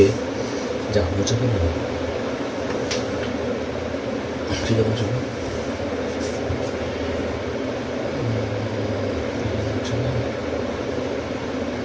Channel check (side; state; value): both; identical; correlation 1.00